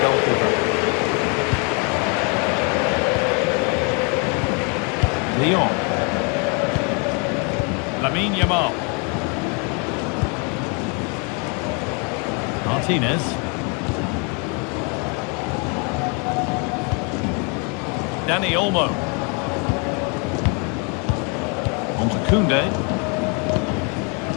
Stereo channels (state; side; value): quieter; right; 34.5 dB